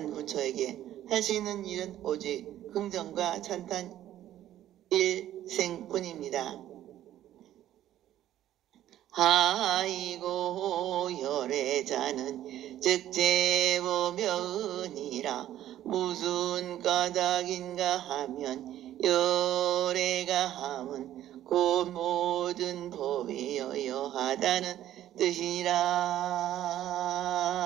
부처에게 할 수 있는 일은 오직 긍정과 찬탄 일생뿐입니다. 하이고 열애자는 즉제보면이라 무슨 까닭인가 하면 열애가 함은 곧 모든 법이 여여하다는 뜻이니라.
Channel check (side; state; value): left; quieter; 12.5 dB